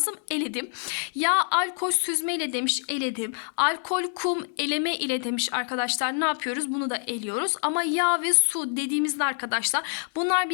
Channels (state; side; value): silent; right; 55 dB below the other